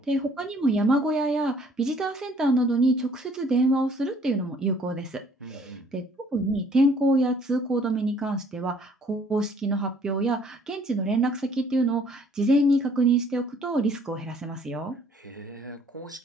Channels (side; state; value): both; normal; correlation 0.59